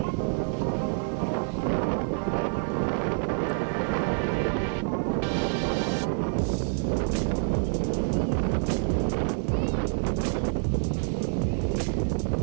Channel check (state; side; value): silent; left; 55 dB below the other